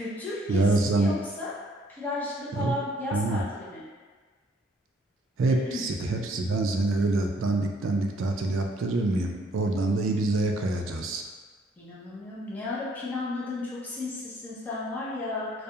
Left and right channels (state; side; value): normal; both; correlation 0.64